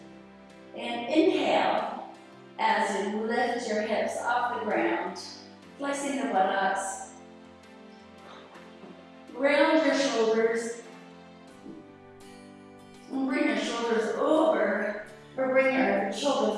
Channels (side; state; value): both; identical; correlation 1.00